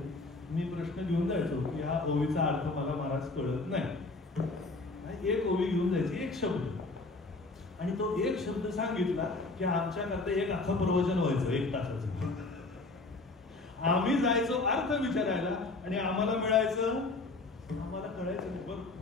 मी प्रश्न घेऊन जायचो की हा ओवीचा अर्थ मला महाराज कळत नाही. एक ओवी घेऊन जायची, एक शब्द, आणि तो एक शब्द सांगितला की आमच्याकरता एक अख्खं प्रवचन व्हायचं 1 तासाचं. आम्ही जायचो अर्थ विचारायला आणि आम्हाला मिळायचं, आम्हाला कळायचं नाही. बघ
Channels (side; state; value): right; quieter; 3.4 dB